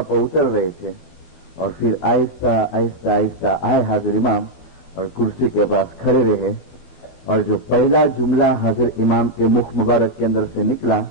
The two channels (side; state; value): right; late; 14 ms